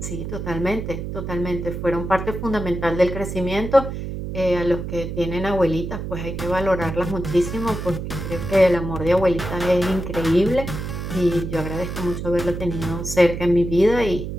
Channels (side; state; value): right; noise; hum, 6 dB below the sound